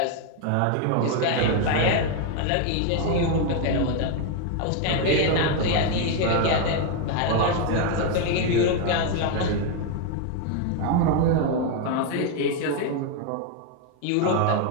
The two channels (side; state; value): both; different; correlation 0.01